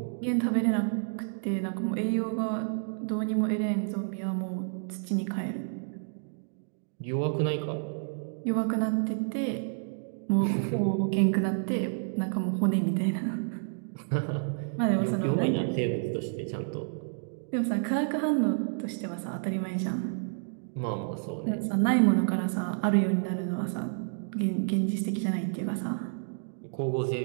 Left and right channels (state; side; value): silent; left; digital silence